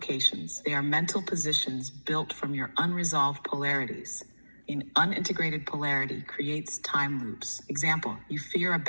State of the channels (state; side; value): inverted; both; correlation -1.00